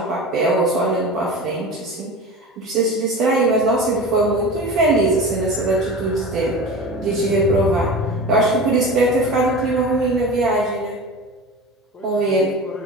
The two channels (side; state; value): both; normal; correlation 0.32